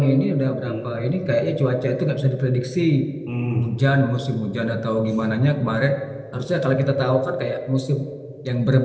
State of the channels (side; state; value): both; identical; correlation 1.00